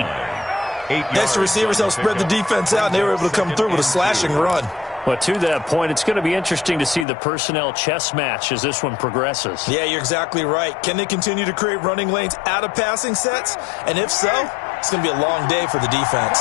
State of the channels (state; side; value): drops out; right; at 7.1 s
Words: Next, the receivers helped spread the defense out, and they were able to come through with a slashing run. But to that point, it's going to be interesting to see the personnel chess match as this one progresses. Yeah, you're exactly right. Can they continue to create running lanes out of passing sets? And if so, it's going to be a long day for the